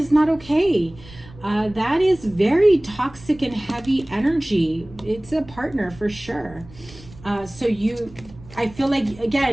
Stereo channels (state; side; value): noise; right; rumble, 20 dB below the sound